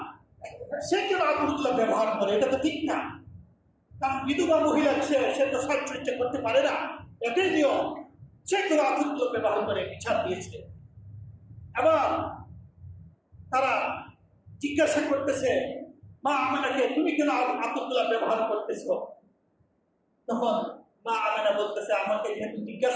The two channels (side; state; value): both; identical; correlation 1.00